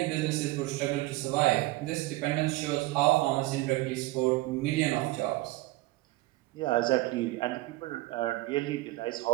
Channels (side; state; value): left; quieter; 19.1 dB